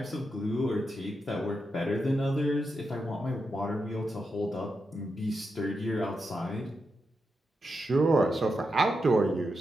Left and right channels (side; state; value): both; normal; correlation 0.86